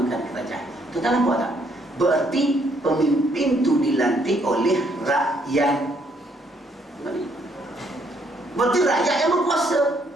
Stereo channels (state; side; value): normal; both; correlation 0.70